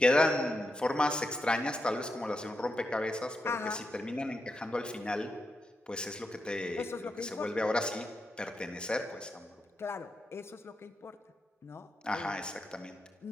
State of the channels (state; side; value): normal; both; correlation 0.85